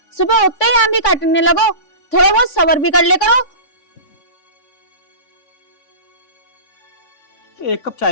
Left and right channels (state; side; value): late; right; 3.5 ms